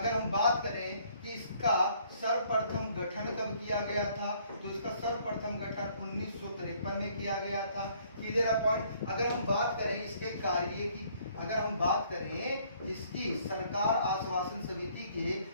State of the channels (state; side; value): inverted; both; correlation -0.62